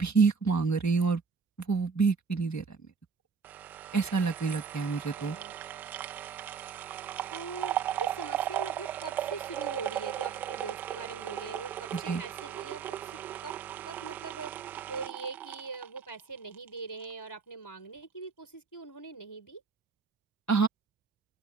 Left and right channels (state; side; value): quieter; left; 5.5 dB